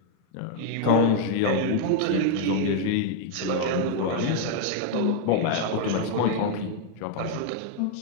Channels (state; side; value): different; both; correlation 0.00